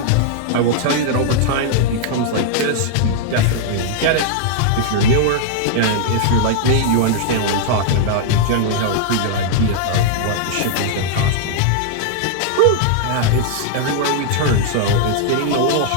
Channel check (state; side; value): different; both; correlation -0.01